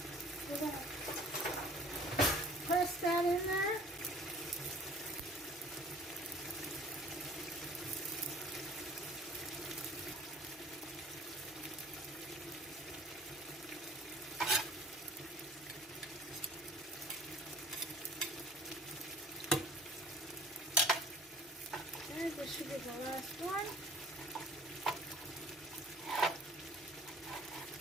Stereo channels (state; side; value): normal; both; correlation 0.50